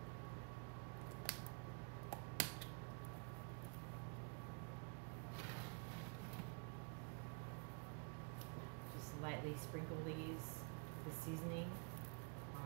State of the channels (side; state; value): left; quieter; 38.5 dB